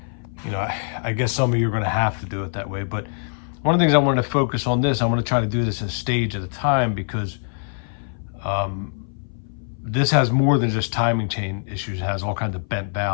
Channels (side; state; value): right; silent; 59 dB below the other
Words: You know, I guess some of you are going to have to do it that way. But one of the things I wanted to focus on this, I want to try to do this a stage at a time, because this has more than just timing chain issues. It has all kinds of bent